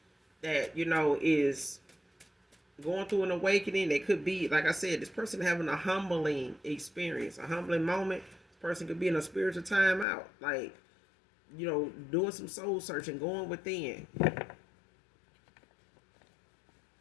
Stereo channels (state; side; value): drops out; right; at 10.1 s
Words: That, you know, is going through an awakening. They could be, like I said, this person having a humbling experience, a humbling moment. This person could be in a spiritual timeout, like, doing some soul searching, going within.